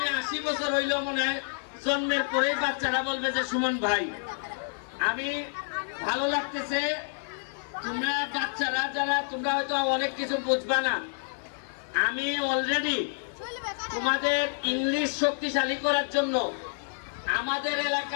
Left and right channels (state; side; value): silent; right; digital silence